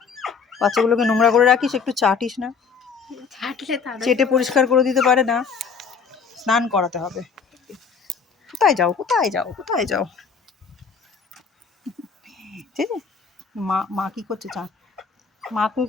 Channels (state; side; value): quieter; right; 5.7 dB